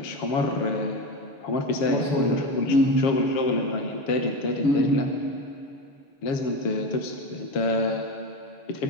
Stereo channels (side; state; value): right; late; 6.7 ms